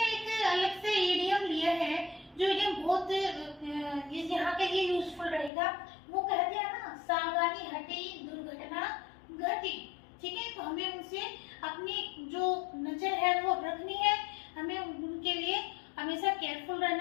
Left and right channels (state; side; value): drops out; right; at 5.5 s